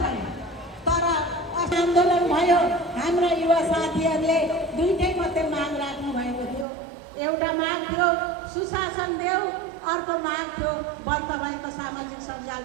भयो, तर आन्दोलन भयो हाम्रा युवा साथीहरूले दुईटै मात्रै माग राख्नु भएको थियो। एउटा माग थियो सुशासन देऊ, अर्को माग थियो बन्द भएको सामाजिक सञ्जाल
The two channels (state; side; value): drops out; left; at 6.7 s